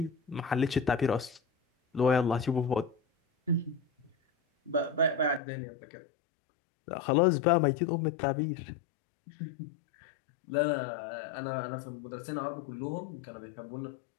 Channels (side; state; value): right; drops out; at 5.4 s